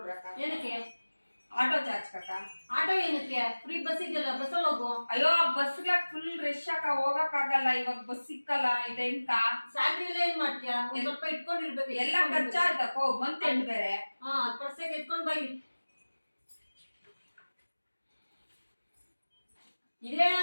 ಏನಕ್ಕೆ? ಆಟೋ ಚಾರ್ಜ್ ಕಕ್ಕ. ಆಟೋ ಏನಕ್ಕೆ? ಫ್ರೀ ಬಸ್ ಇದೆಯಲ್ಲ, ಬಸ್ಸಲ್ಲಿ ಹೋಗು. ಅಯ್ಯೋ ಬಸ್ಗಳ ಫುಲ್ ರಶ್ ಅಕ್ಕ, ಹೋಗಕ್ಕಾಗಲ್ಲ ಇವಾಗ, ಬಸ್ ಸಿಕ್ಕಲ್ಲ ಈ ಟೈಮ್ಕ. ಸ್ಯಾಲ್ರಿ ಎಲ್ಲ ಏನ್ ಮಾಡ್ತೀಯಾ? ಒಂದ್ ಸ್ವಲ್ಪ ಇಟ್ಕೊಂಡಿರ್ಬೇಕು. ಎಲ್ಲ ಖರ್ಚಾಯ್ತಕ್ಕೋ, ಮಂತ್ ಎಂಡ್ ಬೇರೆ. ಪರ್ಸೆಗೆ ಎತ್ಕೊಂಡ್ ಬೈ. ಇದೇ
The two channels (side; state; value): both; inverted; correlation -1.00